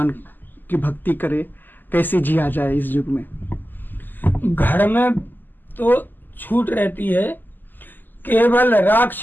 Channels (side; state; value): right; late; 0.089 ms